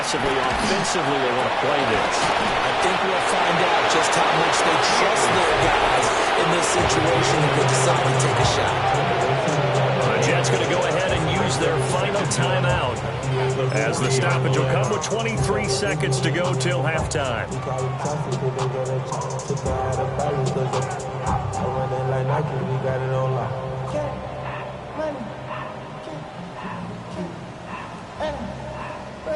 offensively they want to play this. I think we'll find out just how much they trust their guys in this situation if they decide to take a shot. The Jets going to go ahead and use their final timeout as the stoppage will come with 23 seconds to go till halftime.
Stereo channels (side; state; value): both; identical; correlation 1.00